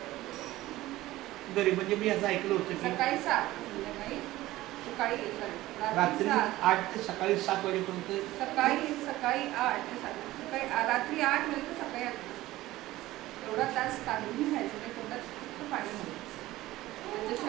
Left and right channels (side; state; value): left; quieter; 16.9 dB